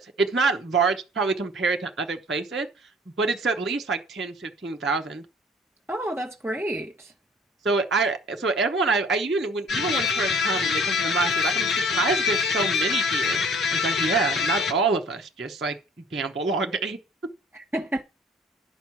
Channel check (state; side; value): normal; both; correlation 0.51